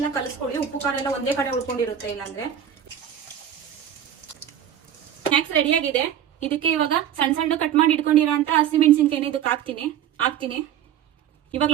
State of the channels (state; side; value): quieter; left; 9.8 dB